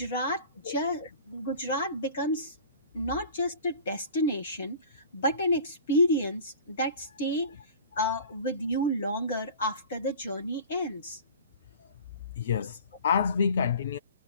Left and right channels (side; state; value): both; inverted; correlation -0.42